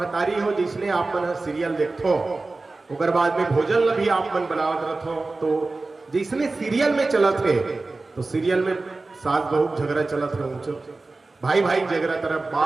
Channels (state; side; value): quieter; left; 3.5 dB